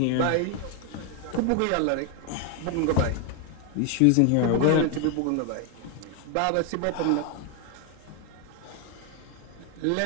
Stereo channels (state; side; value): different; both; correlation 0.01